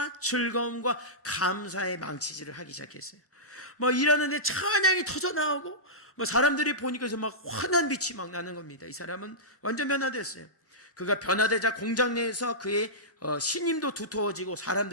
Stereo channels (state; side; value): normal; both; correlation -0.15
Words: 즐거움과 감사의 망치질을 하기 시작했어요. 일하는데 찬양이 터져나오고 사람들이 보니까 막 환한 빛이 막 나는 겁니다. 이 사람은 완전 변화됐어요. 그가 변화되자 공장 내에서 그의 신임도 두터워지고